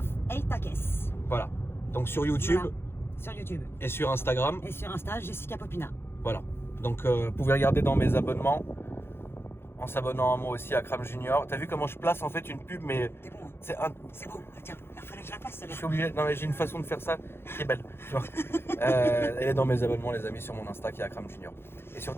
ta caisse. Voilà. Donc sur YouTube Voilà. Sur YouTube. et sur Instagram. Et sur Insta, Jessica Popina. Voilà. Donc vous pouvez regarder dans mes abonnements en s'abonnant à moi aussi à Cram Junior. T'as vu comment je place en fait une pub, mais C'est bon. c'est un. C'est bon. Tiens, il fallait que je la passe. Je suis obligé. Non mais j'ai une façon de faire ça qui est belle. Tu vois. Elle est dans mes abonnements, les amis, sur mon Insta qui est à Cram Junior. Et sur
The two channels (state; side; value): late; right; 0.11 ms